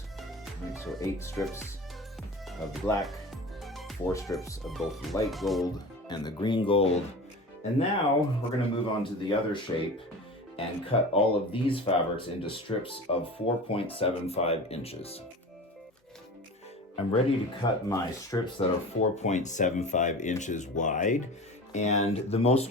Right, so 8 strips of the black, 4 strips of both the light gold and the green gold. And now we're gonna move on to the other shape and cut all of these fabrics into strips of 4.75 inches. I'm ready to cut my strips that are 4.75 inches wide. And the most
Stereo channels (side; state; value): both; normal; correlation 0.34